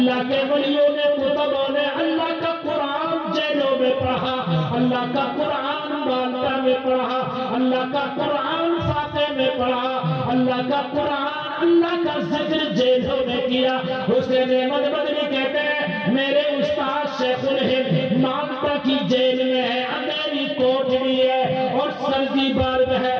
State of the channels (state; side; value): identical; both; correlation 1.00